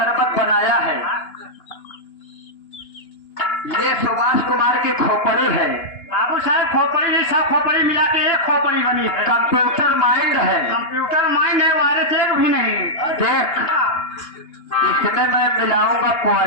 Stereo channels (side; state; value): right; late; 2.9 ms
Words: बनाया है, ये सुभाष कुमार की खोपड़ी है। बाबू साहब खोपड़ी नहीं, सब खोपड़ी मिला के एक खोपड़ी बनी है। कंप्यूटर माइंड है, कंप्यूटर माइंड है, वायरस एक भी नहीं। देख इसमें मैं मिलाऊंगा